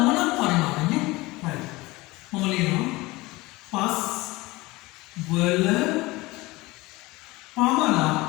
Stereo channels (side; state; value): right; quieter; 21.3 dB